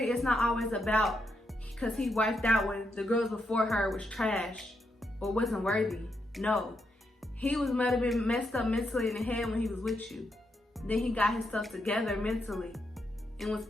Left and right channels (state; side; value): normal; both; correlation 0.81